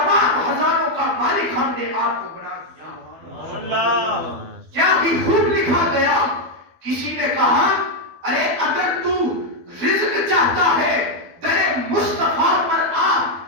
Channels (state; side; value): late; left; 12 ms